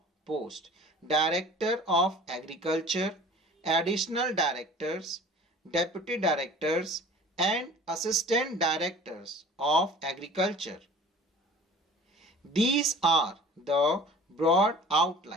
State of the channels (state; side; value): normal; both; correlation 0.45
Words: post: Director of Agriculture, Additional Directors, Deputy Directors and Assistant Directors of Agriculture. These are the broad